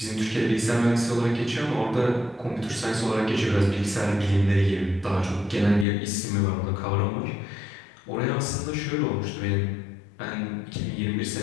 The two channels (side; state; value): right; drops out; at 5.9 s